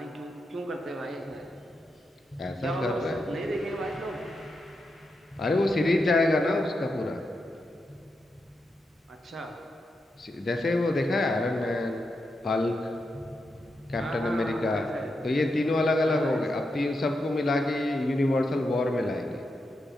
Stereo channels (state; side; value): normal; both; correlation 0.86